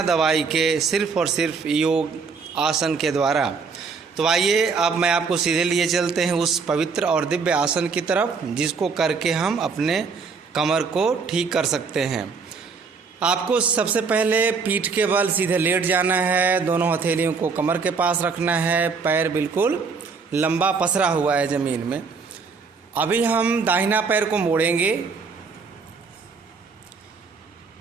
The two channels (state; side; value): quieter; left; 5.1 dB